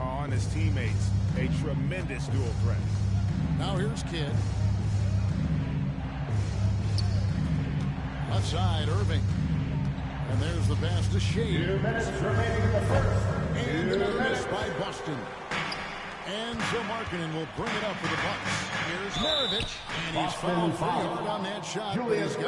on his teammates. A tremendous dual threat. Now here's Kidd. Left side, Irving. And there's the pass to Shea. 2 minutes remaining in the first. And a miss by Boston. And so Markkanen will bring it up for the Bucks. Here's Maravich. And he's fouled pretty hard on that shot. But he's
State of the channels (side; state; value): both; identical; correlation 1.00